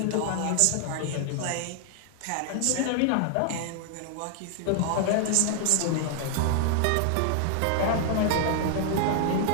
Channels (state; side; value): different; both; correlation 0.00